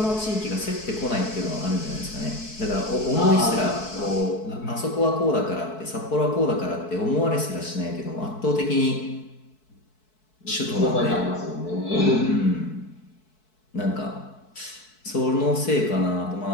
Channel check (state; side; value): late; right; 4.6 ms